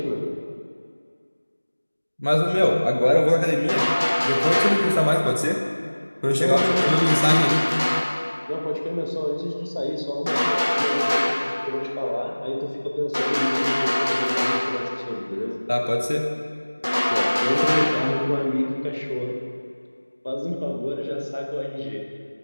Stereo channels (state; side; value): inverted; both; correlation -1.00